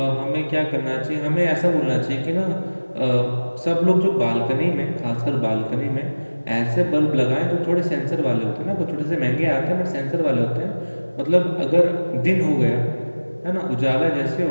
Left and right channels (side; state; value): both; inverted; correlation -1.00